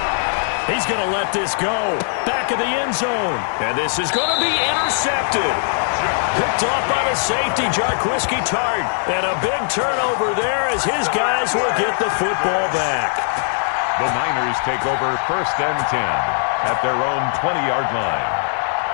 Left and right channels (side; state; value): right; silent; digital silence